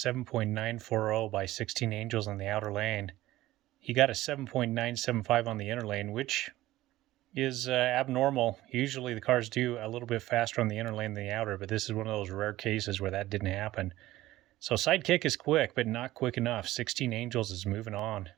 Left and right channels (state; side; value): quieter; left; 16.2 dB